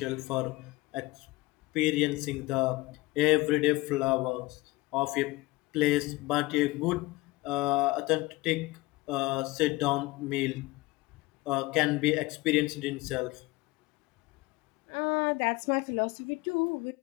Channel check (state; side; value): quieter; right; 21.2 dB